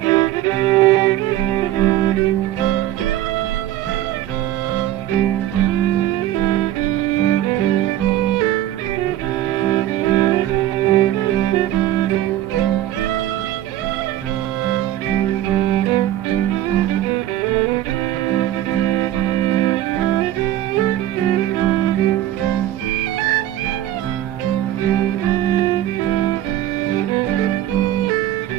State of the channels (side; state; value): left; quieter; 13.3 dB